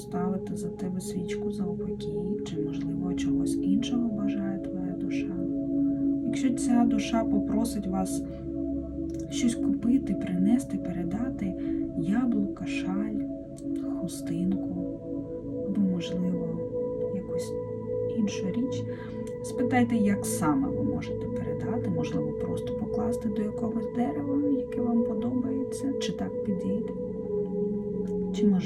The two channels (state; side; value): identical; both; correlation 1.00